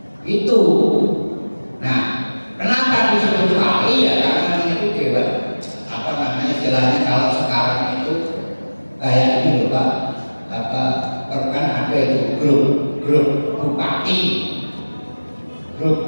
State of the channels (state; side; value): inverted; both; correlation -1.00